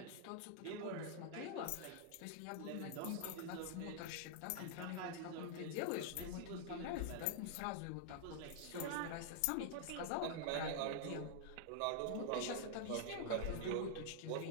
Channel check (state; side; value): different; both; correlation -0.01